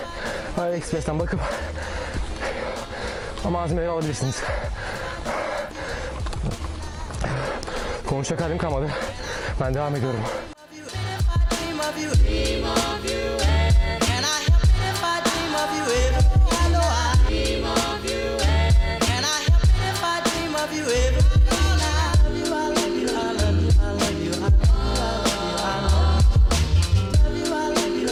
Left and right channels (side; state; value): both; identical; correlation 1.00